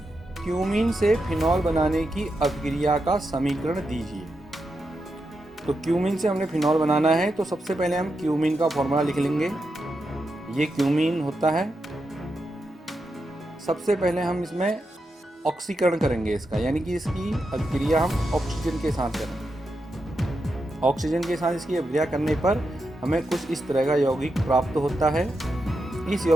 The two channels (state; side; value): normal; both; correlation 0.86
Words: क्यूमीन से फिनॉल बनाने की अभिक्रिया का समीकरण दीजिए। तो क्यूमीन से हमने फिनॉल बनाना है, तो सबसे पहले हम क्यूमीन का फॉर्मूला लिख लेंगे। ये क्यूमीन होता है। सबसे पहले हम इसमें ऑक्सीकरण करेंगे इसका, यानी कि इसकी अभिक्रिया हम ऑक्सीजन के साथ करेंगे। ऑक्सीजन के साथ इसकी अभिक्रिया करने पर हमें कुछ इस तरह का यौगिक प्राप्त होता है। इस